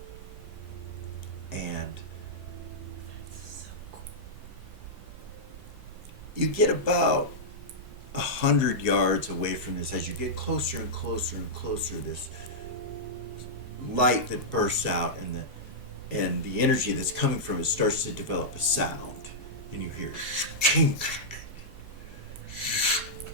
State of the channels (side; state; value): both; normal; correlation -0.10